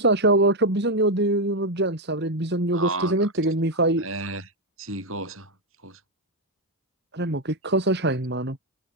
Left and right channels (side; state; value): both; normal; correlation 0.04